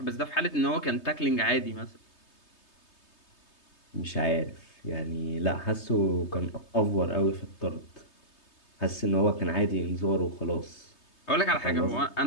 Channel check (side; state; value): right; late; 3.2 ms